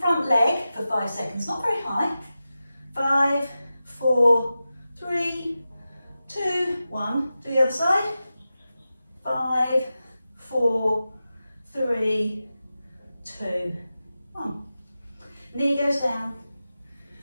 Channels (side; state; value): both; inverted; correlation -0.93